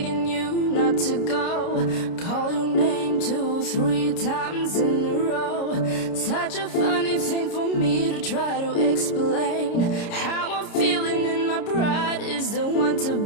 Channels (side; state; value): right; late; 30 ms